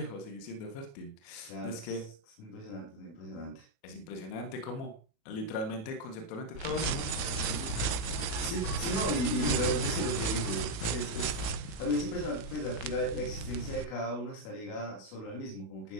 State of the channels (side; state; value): right; late; 36 ms